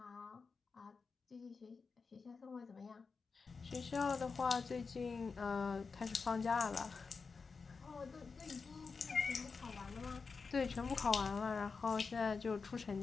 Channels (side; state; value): right; quieter; 4.8 dB